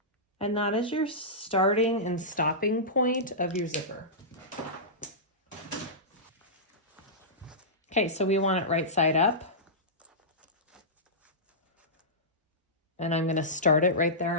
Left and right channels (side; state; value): both; normal; correlation -0.16